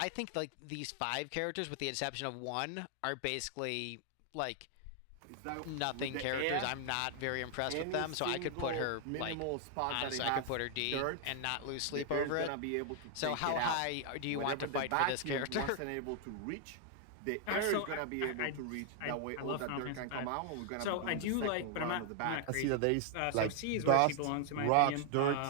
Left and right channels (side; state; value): both; different; correlation 0.00